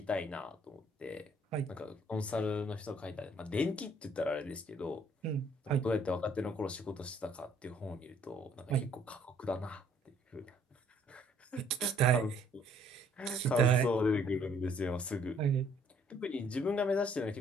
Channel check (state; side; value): normal; both; correlation 0.62